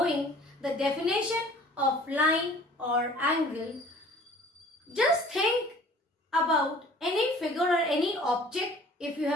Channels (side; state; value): both; normal; correlation 0.50